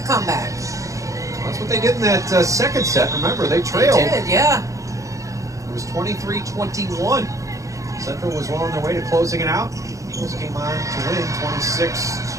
comeback. That's what they did in that second set. Remember, they trailed. They did, yeah. It was 23-21. Central was well on their way to closing it out. Eagles came on to win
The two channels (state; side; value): late; left; 0.16 ms